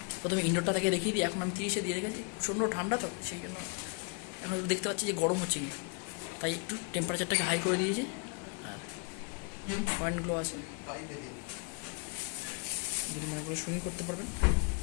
প্রথমে ইনডোরটা থেকে দেখিয়ে দিই। এখন আমি 30-এ দিয়ে রেখেছি, প্রচণ্ড ঠান্ডা, তো সেই জন্য এখন দেখতে পাচ্ছি যে গরম হচ্ছে কিন্তু, তাই একটু টেম্পারেচারটাকে হাই করে দিয়েছি। আর পয়েন্টগুলো আছে, যদি মনে করে সুইং করতে পারবেন।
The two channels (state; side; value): quieter; right; 36.6 dB